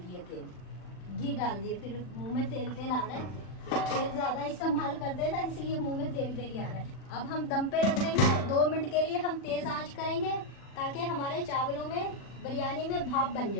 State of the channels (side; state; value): right; late; 40 ms